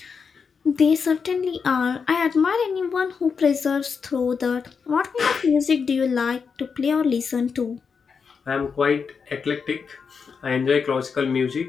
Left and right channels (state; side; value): quieter; right; 5.8 dB